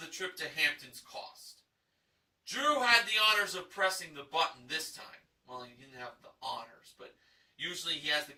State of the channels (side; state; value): both; identical; correlation 1.00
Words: trip to Hamptons cost. Drew had the honors of pressing the button this time. Well, he didn't have the honors, but usually he has the